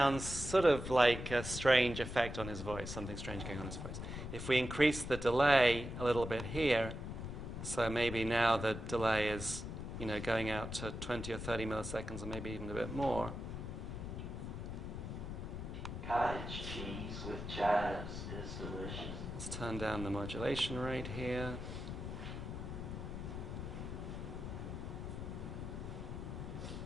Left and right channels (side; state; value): left; noise; rumble, 6 dB below the sound